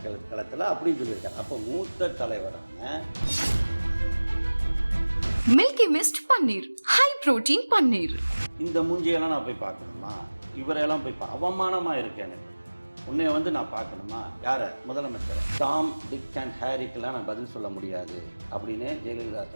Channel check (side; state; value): both; inverted; correlation -1.00